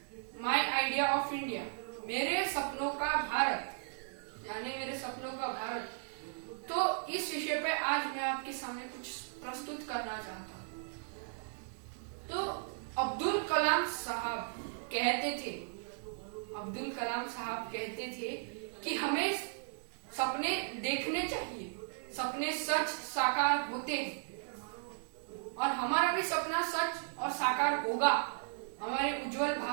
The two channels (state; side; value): silent; left; digital silence